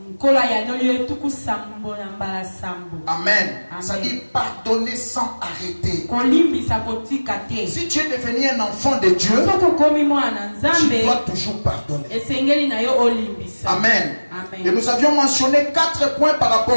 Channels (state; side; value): inverted; both; correlation -1.00